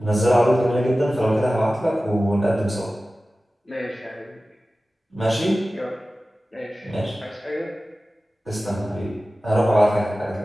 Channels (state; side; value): normal; both; correlation 0.96